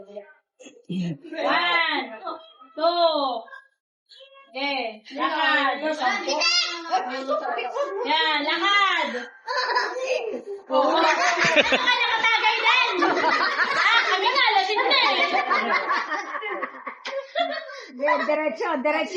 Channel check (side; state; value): both; identical; correlation 1.00